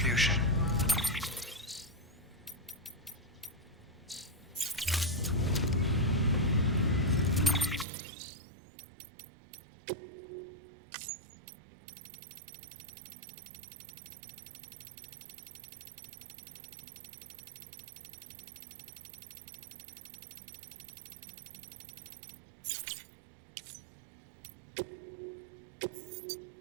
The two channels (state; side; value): drops out; left; at 7.9 s